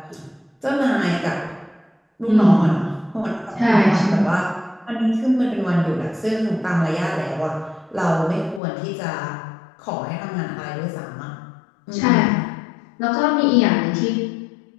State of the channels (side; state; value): right; drops out; at 8.6 s